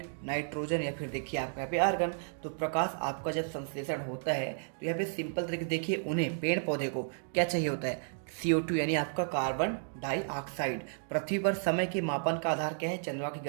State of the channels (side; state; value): left; silent; digital silence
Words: नाइट्रोजन, या फिर देखिए आपका यहाँ पे आर्गन। तो प्रकाश आपका जब संश्लेषण होता है तो यहाँ पे सिंपल तरीके देखिए, उन्हें पेड़ पौधे को क्या चाहिए होता है, CO2 यानी आपका कार्बन डाइऑक्साइड। पृथ्वी पर समय के मापन का आधार क्या है, चंद्रमा की